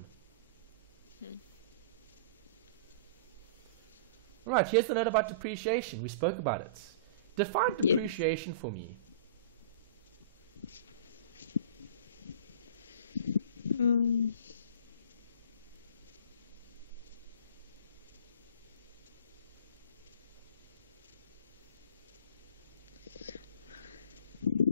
All right, here's the note about depreciation. We spoke about it. Define depreciation for me.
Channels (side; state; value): both; inverted; correlation -0.38